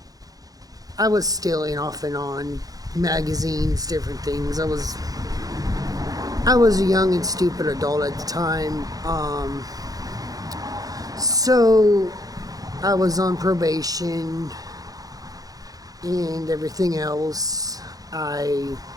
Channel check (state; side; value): late; left; 0.18 ms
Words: I was stealing off and on magazines, different things. I was a young and stupid adult at the time. So I was on probation and everything else. I